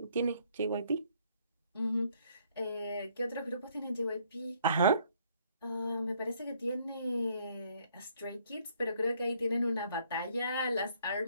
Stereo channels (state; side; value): inverted; both; correlation -0.65